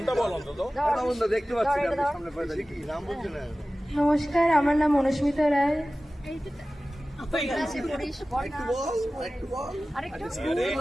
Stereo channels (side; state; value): both; normal; correlation 0.96